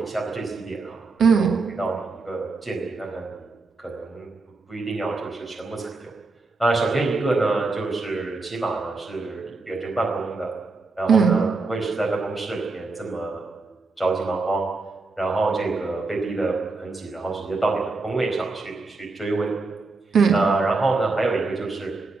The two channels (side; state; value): left; quieter; 3.7 dB